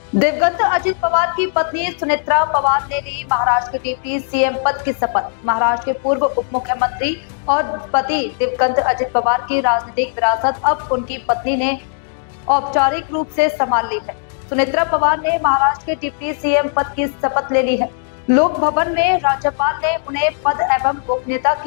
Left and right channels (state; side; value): silent; right; digital silence